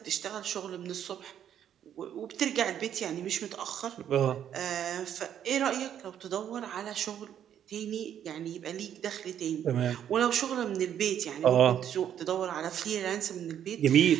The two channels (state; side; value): quieter; left; 9.8 dB